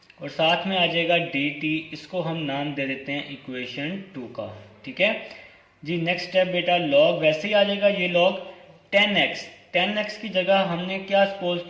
और साथ में आ जाएगा डी टी, इसको हम नाम दे देते हैं इक्वेशन 2 का। ठीक है जी, नेक्स्ट स्टेप बेटा लॉग वैसे ही आ जाएगा, ये लॉग 10x, 10x की जगह हमने क्या सपोज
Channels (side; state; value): both; identical; correlation 1.00